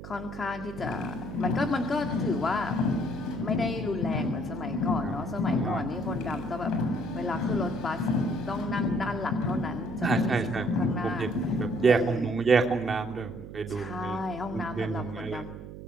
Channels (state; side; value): noise; right; hum, 12 dB below the sound